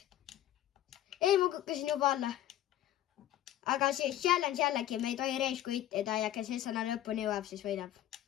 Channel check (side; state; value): right; quieter; 12.8 dB